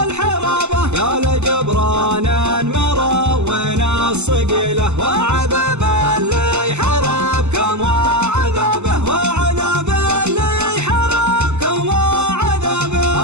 الحرابه. يا لجبران مروين الصقيله، وعذاب اللي حربكم وعذابه، وعذاب اللي حربكم وعذابه.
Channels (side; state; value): left; late; 0.82 ms